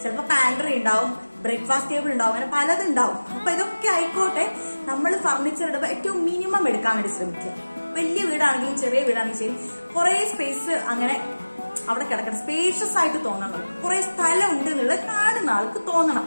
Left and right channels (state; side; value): inverted; both; correlation -1.00